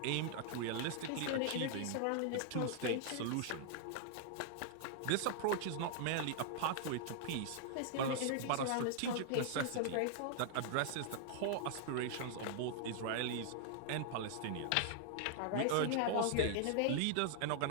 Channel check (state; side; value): different; both; correlation -0.01